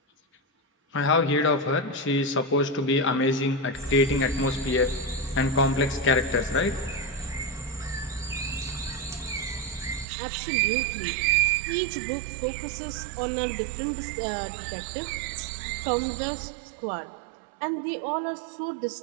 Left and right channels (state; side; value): drops out; left; at 10.1 s